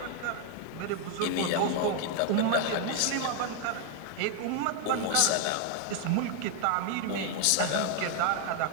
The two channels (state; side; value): different; both; correlation 0.00